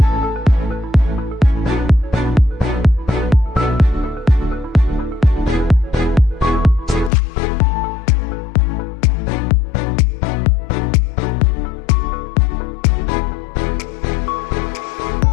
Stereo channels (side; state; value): right; drops out; at 7.1 s